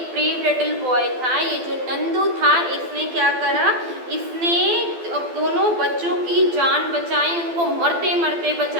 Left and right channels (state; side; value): late; left; 12 ms